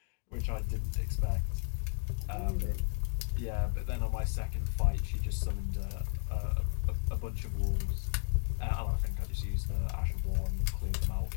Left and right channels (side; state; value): right; silent; 55 dB below the other